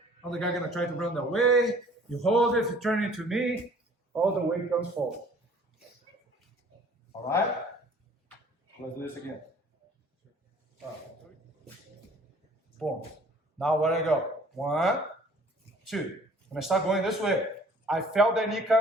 Other guy gonna try to run that way. You hold it, you turn it to me, all the weight comes forward. All right? Let's do this again. Boom. Now where I go? 1, 2. When I start going this way, I felt that knee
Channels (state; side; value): normal; both; correlation 0.53